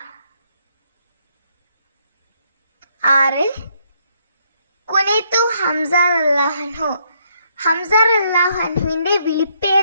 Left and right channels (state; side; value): inverted; both; correlation -0.71